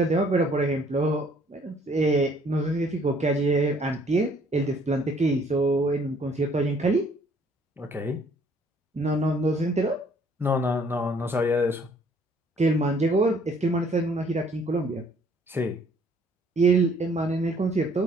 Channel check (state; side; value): normal; both; correlation 0.61